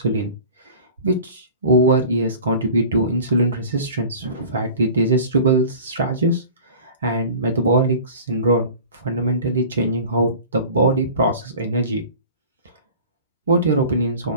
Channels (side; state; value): both; inverted; correlation -0.41